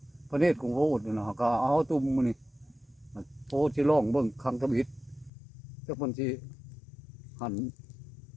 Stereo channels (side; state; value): right; drops out; at 5.3 s